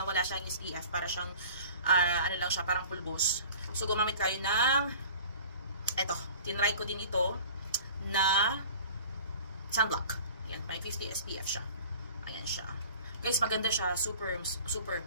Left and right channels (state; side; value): inverted; both; correlation -0.43